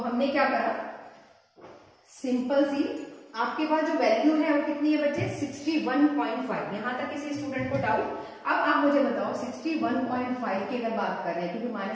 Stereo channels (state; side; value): identical; both; correlation 1.00